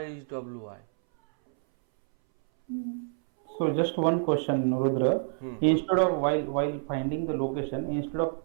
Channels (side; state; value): left; silent; 59 dB below the other